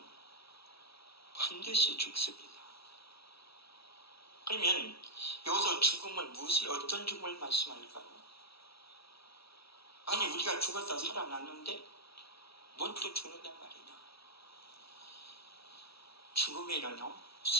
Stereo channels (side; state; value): right; late; 0.76 ms